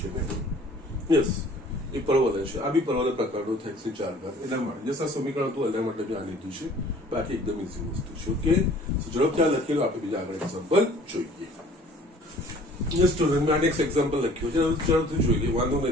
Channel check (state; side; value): normal; both; correlation 0.52